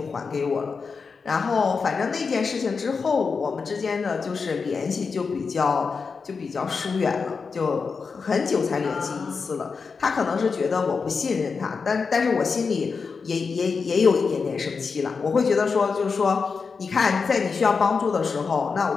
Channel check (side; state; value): right; quieter; 5.1 dB